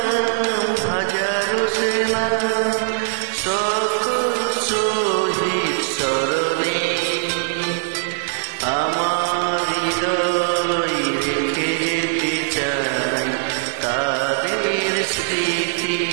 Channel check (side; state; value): left; silent; digital silence